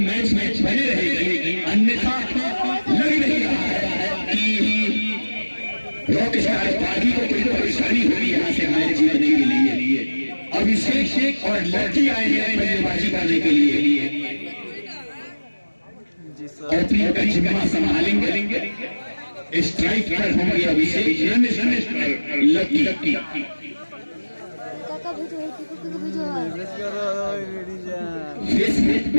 बने रहेगी। अन्यथा लग नहीं रहा है कि रॉक स्टार पार्टी को कोई परेशानी होगी यहाँ से मैच जीतने के लिए। अभिषेक और लड़की आए हैं बल्लेबाजी करने के लिए और अपनी जिम्मा संभालेंगे। स्ट्राइक पर होंगे अभिषेक, लकी फेसबुक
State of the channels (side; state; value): both; inverted; correlation -1.00